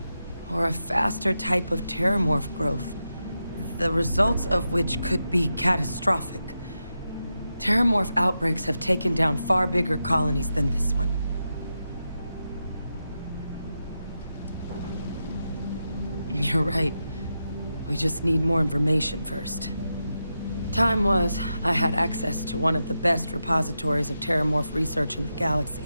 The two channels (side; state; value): both; inverted; correlation -0.88